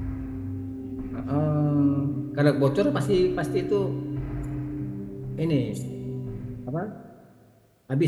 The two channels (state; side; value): identical; both; correlation 1.00